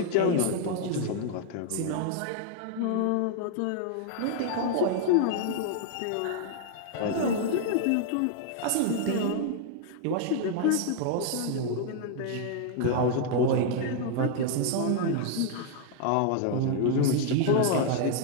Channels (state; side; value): different; both; correlation 0.00